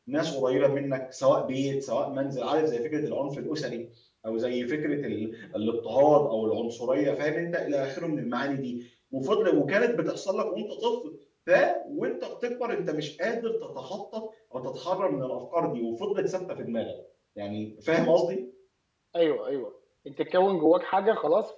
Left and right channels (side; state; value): both; identical; correlation 1.00